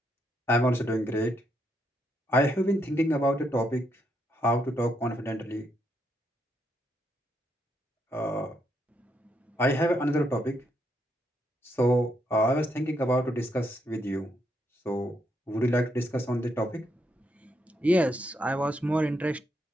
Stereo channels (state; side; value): normal; both; correlation 0.77